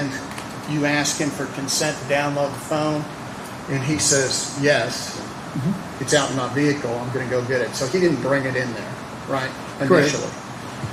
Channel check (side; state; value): both; identical; correlation 1.00